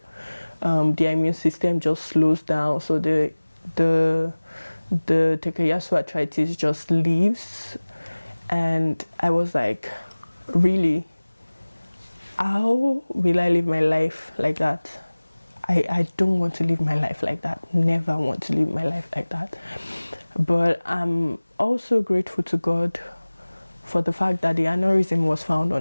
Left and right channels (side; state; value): both; inverted; correlation -1.00